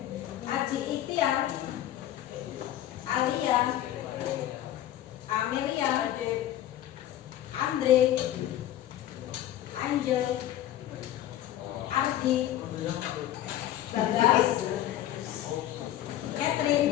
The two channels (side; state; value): right; quieter; 12.8 dB